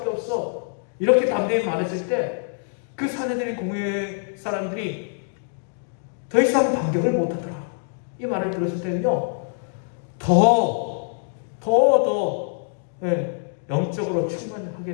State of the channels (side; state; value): right; silent; digital silence